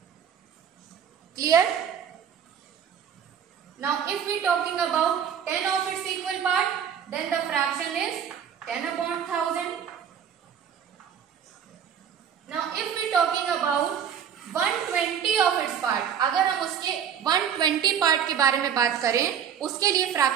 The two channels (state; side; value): quieter; left; 8.3 dB